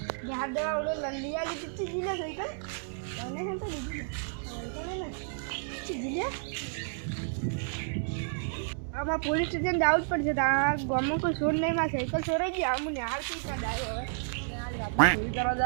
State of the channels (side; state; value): left; silent; 57 dB below the other